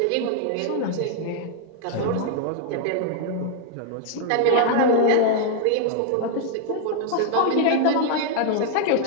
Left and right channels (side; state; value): both; different; correlation 0.00